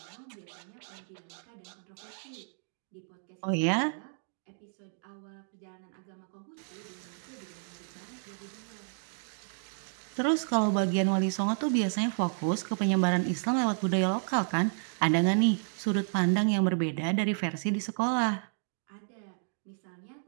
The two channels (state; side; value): silent; left; digital silence